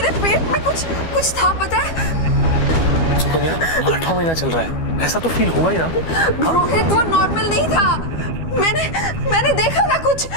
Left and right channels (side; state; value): right; late; 12 ms